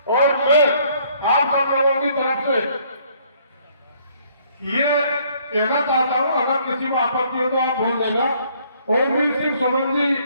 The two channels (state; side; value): inverted; both; correlation -0.63